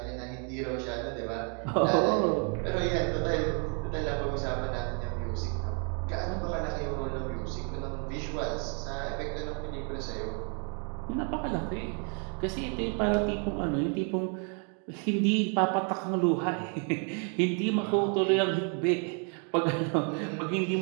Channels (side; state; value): left; quieter; 39.4 dB